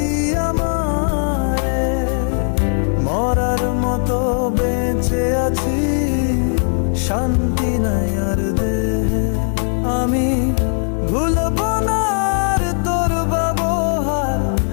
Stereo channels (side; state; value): right; silent; digital silence